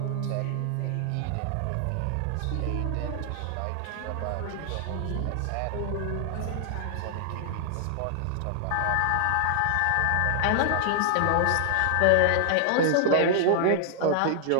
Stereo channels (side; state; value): both; different; correlation 0.00